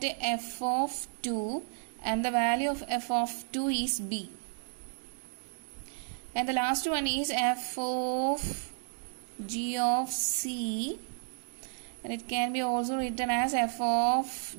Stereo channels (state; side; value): silent; left; 56 dB below the other